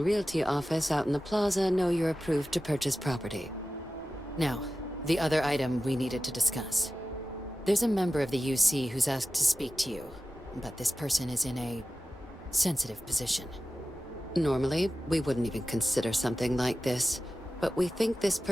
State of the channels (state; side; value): normal; both; correlation 0.94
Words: Realty office out in the plaza know you're approved to purchase property. Now, the other item we needed to discuss. There's a member of the UC who's asked to speak to you, but this person is in a sensitive position. Normally, we wouldn't even consider something like this, but we think this